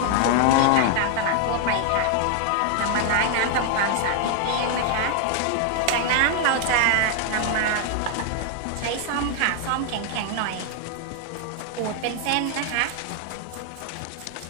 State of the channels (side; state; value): both; different; correlation 0.00